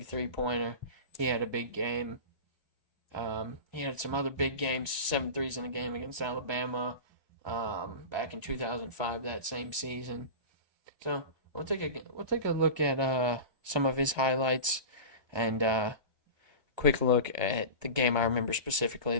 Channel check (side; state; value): left; late; 1.3 ms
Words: three-pointer. He had a big game. He had some other big games, 7 threes in a game against Alabama, back in 2005, that same season. So we'll take a look at some of his highlights and quick look at the game I remember specifically,